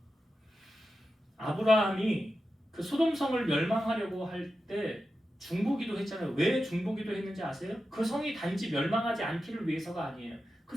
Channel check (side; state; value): both; normal; correlation 0.91